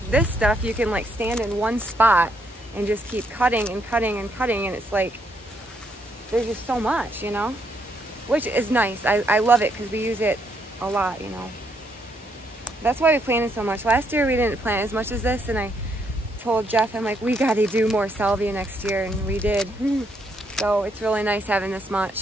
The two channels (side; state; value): both; normal; correlation 0.74